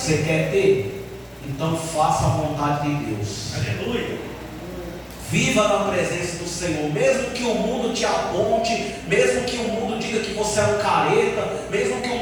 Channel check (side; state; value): both; identical; correlation 1.00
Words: quer ter? Então faça a vontade de Deus. Aleluia. Viva na presença do Senhor, mesmo que o mundo te aponte, mesmo que o mundo diga que você é um careta, mesmo que o